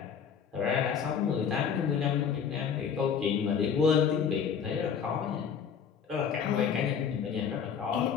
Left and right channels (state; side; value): quieter; right; 7.2 dB